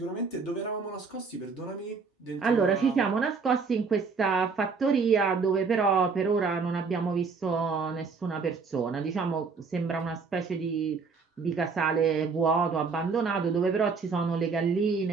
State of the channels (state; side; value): quieter; left; 5.0 dB